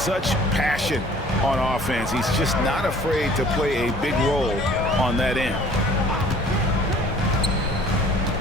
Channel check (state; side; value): normal; both; correlation 0.52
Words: passion on offense. He's just not afraid to play a big role on that end.